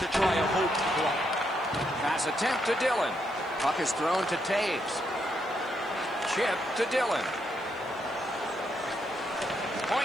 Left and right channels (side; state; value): left; noise; hiss, 30 dB below the sound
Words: try a hope play. Pass attempt to Dillon. Puck is thrown to Taves. Chip to Dillon.